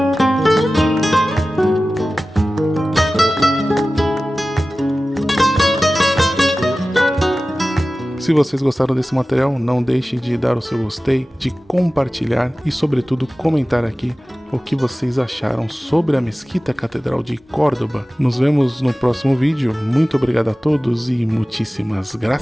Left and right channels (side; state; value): both; normal; correlation 0.96